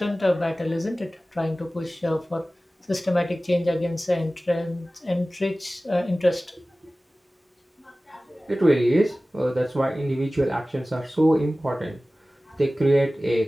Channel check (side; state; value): both; normal; correlation 0.97